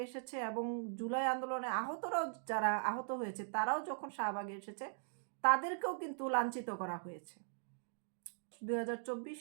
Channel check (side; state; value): left; silent; digital silence